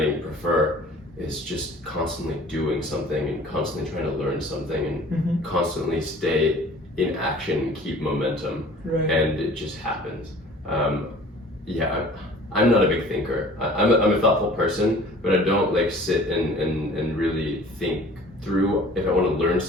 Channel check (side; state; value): both; normal; correlation 0.48